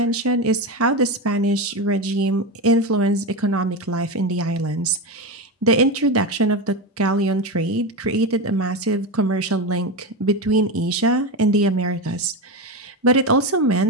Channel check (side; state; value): both; normal; correlation 0.17